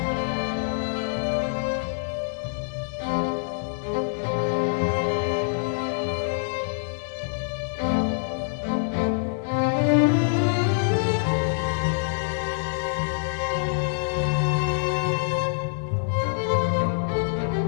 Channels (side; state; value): right; silent; 61 dB below the other